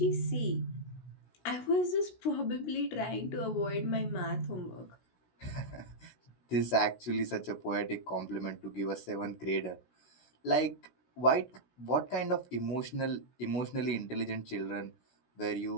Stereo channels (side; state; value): right; late; 16 ms